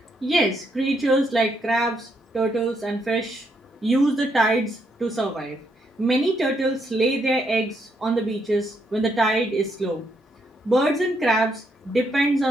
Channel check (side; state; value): both; normal; correlation 0.76